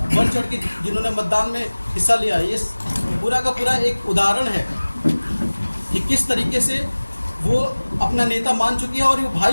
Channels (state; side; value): inverted; both; correlation -1.00